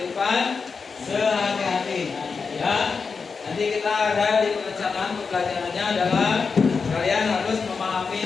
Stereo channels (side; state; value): right; quieter; 5.1 dB